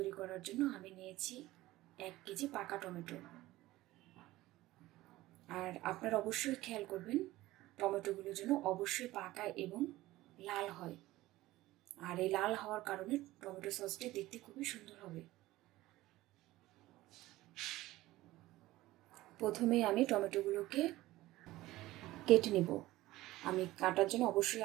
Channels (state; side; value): quieter; left; 17.3 dB